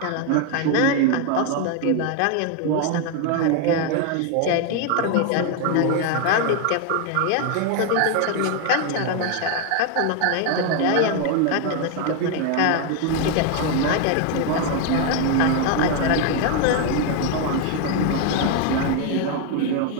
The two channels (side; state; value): both; different; correlation 0.01